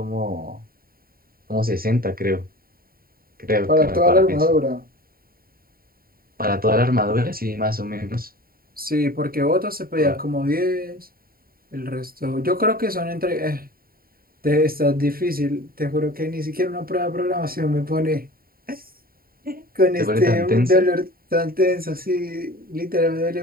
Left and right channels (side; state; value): left; late; 0.43 ms